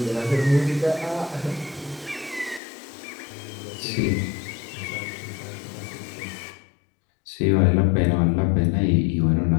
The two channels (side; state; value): right; drops out; at 2.6 s